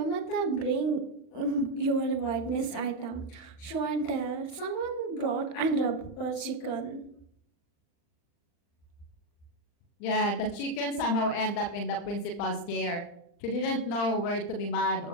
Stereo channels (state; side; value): late; right; 39 ms